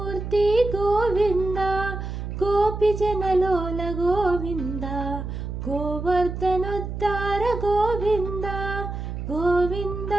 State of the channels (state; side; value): noise; right; hum, 6 dB below the sound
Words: ಗೋವಿಂದ ಗೋಪಿ ಜನಲೋಲ ಗೋವಿಂದ ಗೋವರ್ಧನೋದ್ಧಾರ ಗೋವಿಂದ ಗೋವಿಂದ